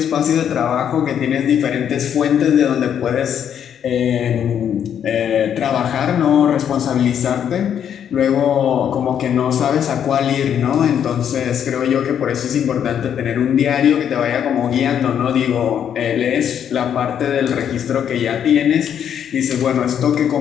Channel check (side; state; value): right; quieter; 8.9 dB